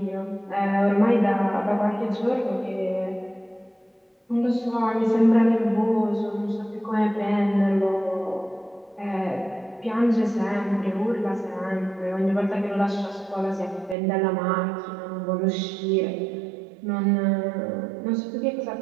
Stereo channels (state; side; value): drops out; left; at 14.0 s